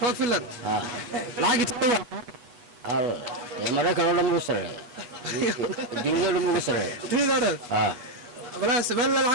lacag tawa ya maraykan oo dhan ugu sareeyo dunida oo dhan ugu sareeyo dunida oo dhan wala sabal la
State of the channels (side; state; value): left; late; 8.2 ms